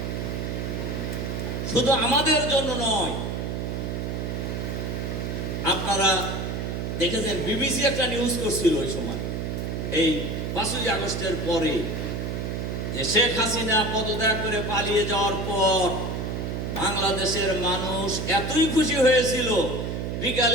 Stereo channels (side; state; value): right; noise; hum, 3 dB below the sound